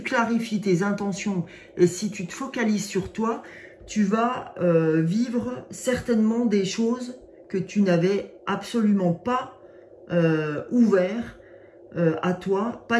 clarifies tes intentions et si tu te focalises sur toi, tu vas vivre certainement des choses que tu n'avais absolument pas ouvert à toi,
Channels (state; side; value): identical; both; correlation 1.00